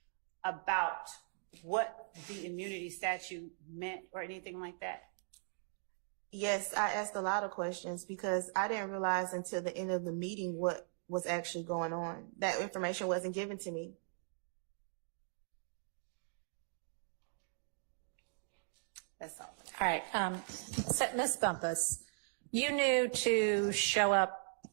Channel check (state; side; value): silent; left; digital silence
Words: about what the immunity statute meant or anything like that? Yes, I asked a lot of questions because I didn't realize until the end of the meeting what was actually going on. That information wasn't given to me. That's all. All right. So Ms. Bumpus, you knew to show up